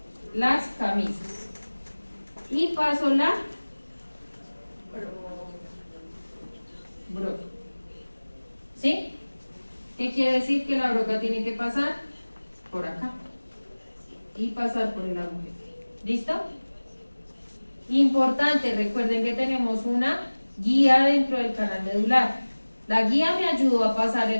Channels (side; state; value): both; inverted; correlation -1.00